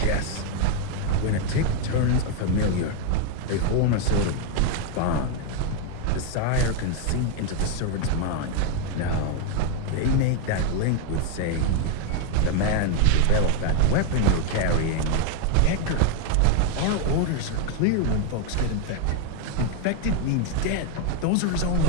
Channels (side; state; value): both; different; correlation 0.01